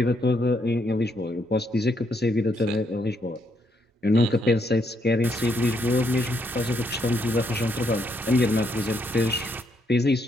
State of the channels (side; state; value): both; normal; correlation 0.75